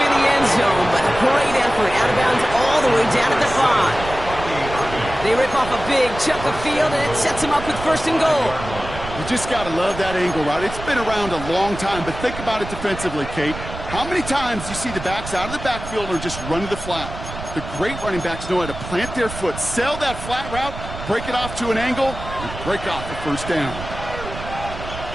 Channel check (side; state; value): right; noise; rumble, 10 dB below the sound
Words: in the end zone, but a great effort. Out of bounds all the way down at the 5. They rip off a big chunk of field, and it sets him up with first and goal. You just got to love that angle route. It's been around a long time, but think about it defensively, Kate. How many times do you see the backs out of the backfield or just run to the flat? The great running backs know how to plant their foot, sell that flat route, break it off to an angle, and break off the first down.